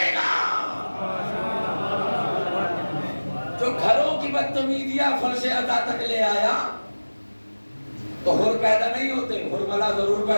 گا. جو گھروں کی بدتمیزیاں فرش اعضاء تک لے آیا تو حر پیدا نہیں ہوتے، حرملا ضرور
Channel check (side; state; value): both; inverted; correlation -1.00